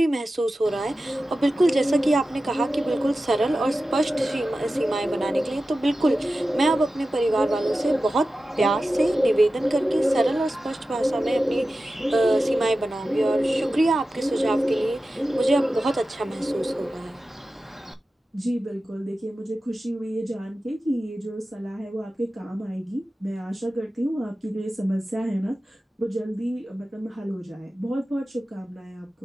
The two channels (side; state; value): both; normal; correlation 0.94